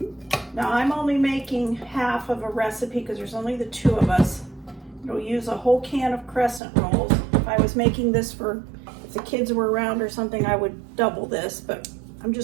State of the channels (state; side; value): drops out; left; at 6.6 s